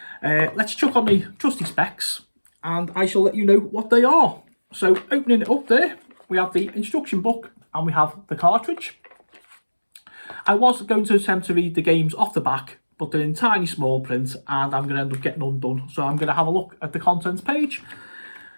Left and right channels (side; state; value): both; inverted; correlation -1.00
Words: Let's chuck on the trusty specs and I shall let you know what they are. So opening it up there, we have the instruction book and we have the cartridge. I was going to attempt to read the games off the back, but they're in tiny small print and I'm going to end up getting undone. So I'm going to have a look at the contents page.